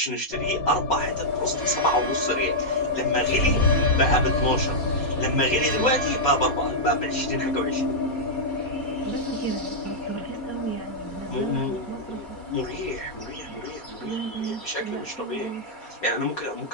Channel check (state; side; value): late; right; 4.2 ms